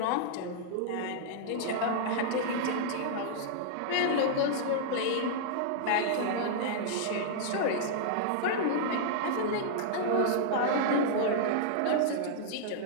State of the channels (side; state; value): both; different; correlation -0.01